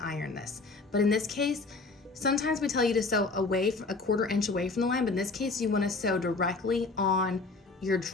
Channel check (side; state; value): right; quieter; 3.7 dB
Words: iron this. But in this case, sometimes we tell you to sew away from a 1/4 inch away from the line, but in this case you want to sew directly on your